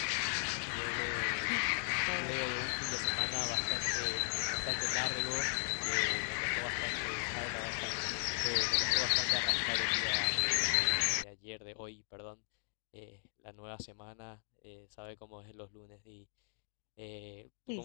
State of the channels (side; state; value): right; silent; digital silence